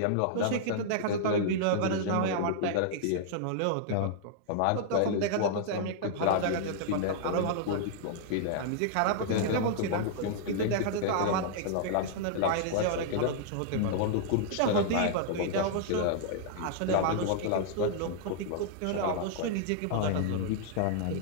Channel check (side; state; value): both; different; correlation -0.01